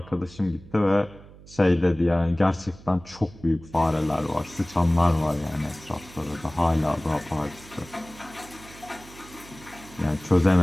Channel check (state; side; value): noise; right; hum, 20 dB below the sound